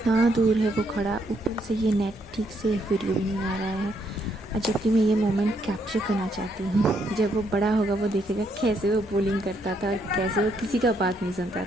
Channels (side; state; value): both; normal; correlation 0.74